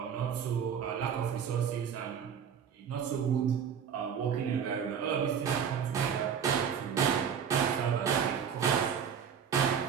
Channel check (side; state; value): left; quieter; 7.5 dB